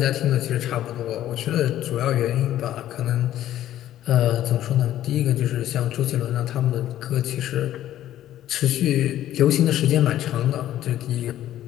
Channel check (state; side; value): quieter; right; 12.7 dB